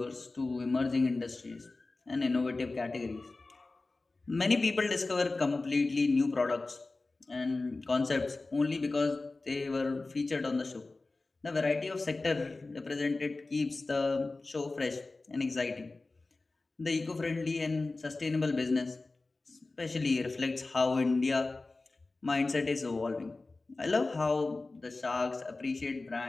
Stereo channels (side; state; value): right; quieter; 3.4 dB